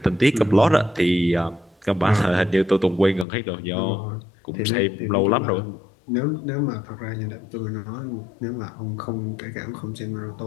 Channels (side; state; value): right; drops out; at 3.2 s